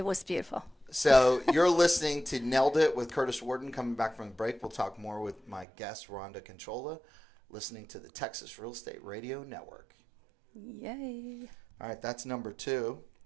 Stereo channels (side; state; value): left; drops out; at 5.7 s